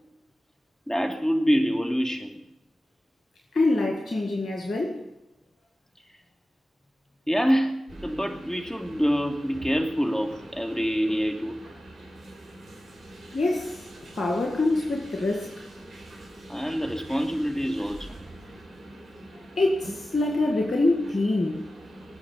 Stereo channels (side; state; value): both; normal; correlation 0.94